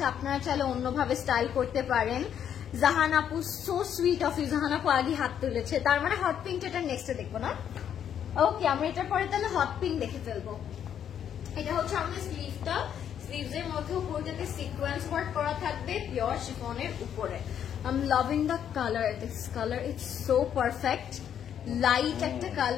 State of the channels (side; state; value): right; quieter; 9.1 dB